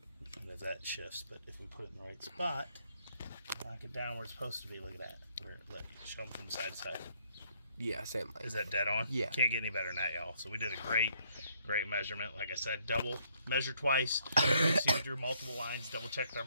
And as that shifts, but if we put it in the right spot, knock it down where it's supposed to be. Look at that. Show them from side to side. Yeah, same length. Is that dead on? Yeah. Can't get any better than that, y'all. So we did a great measurement. Like I said, double, measure twice. See, we drew multiple lines, double checked our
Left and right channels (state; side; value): inverted; both; correlation -0.69